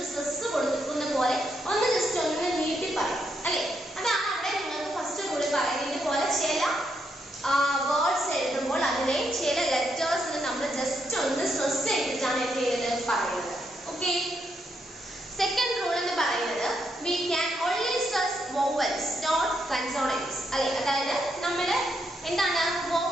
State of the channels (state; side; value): normal; both; correlation 0.79